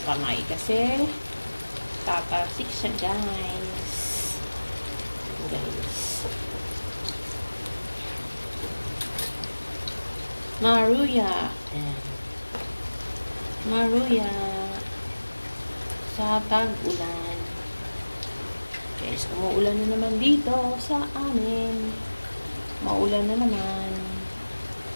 kamay kasi tatasik siya, guys. Maruya. Ayan. Maruya. Sa tag-ulan. Guys, umuulan na naman dito sa amin. Maulan na naman.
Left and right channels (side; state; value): both; inverted; correlation -1.00